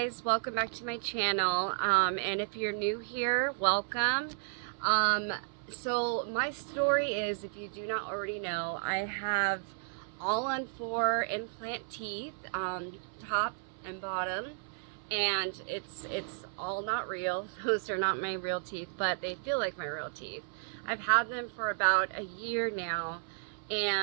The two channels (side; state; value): left; silent; 56 dB below the other